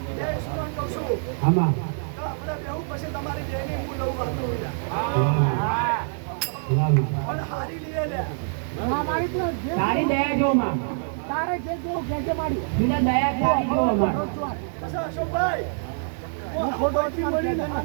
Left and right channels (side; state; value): left; silent; 62 dB below the other